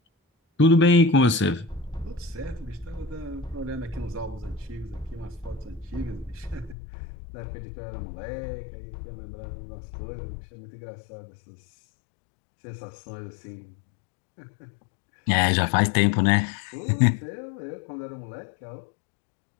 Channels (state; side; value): drops out; right; at 6.8 s